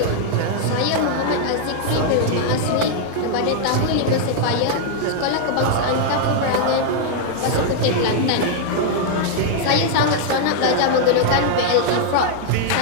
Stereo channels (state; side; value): different; both; correlation -0.01